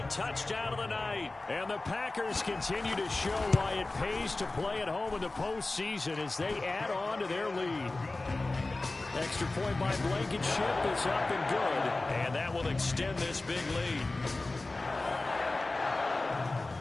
touchdown of the night. And the Packers continue to show why it pays to play at home in the postseason as they add on to their lead. Extra point by Blankenship is up and good. And that will extend this big lead.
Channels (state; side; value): quieter; right; 3.1 dB